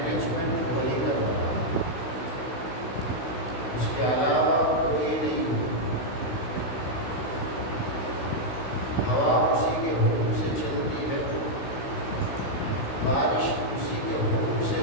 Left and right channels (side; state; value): right; late; 16 ms